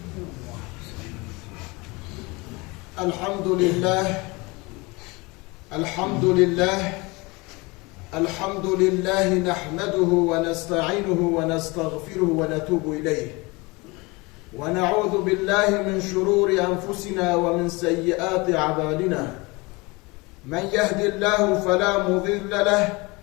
الحمد لله الحمد لله الحمد لله نحمده ونستعينه ونستغفره ونتوب إليه ونعوذ بالله من شرور أنفسنا ومن سيئات أعمالنا من يهد الله فلا مضل له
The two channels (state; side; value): quieter; right; 25.3 dB